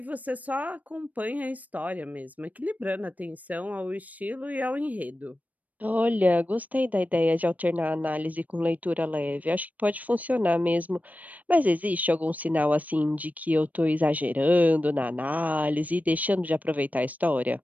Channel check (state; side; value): late; left; 0.076 ms